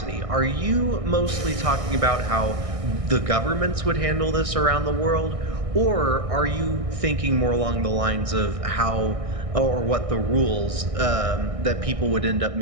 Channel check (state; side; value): late; left; 1.6 ms